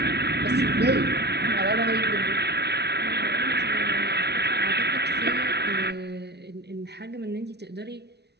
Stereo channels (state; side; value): late; left; 0.49 ms